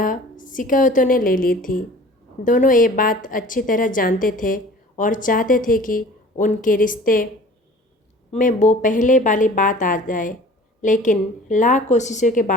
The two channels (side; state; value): both; normal; correlation 0.45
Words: शिकायतों ने ले ली थी। दोनों ये बात अच्छी तरह जानते थे और चाहते थे कि उनके रिश्ते में वो पहले वाली बात आ जाए, लेकिन लाख कोशिशों के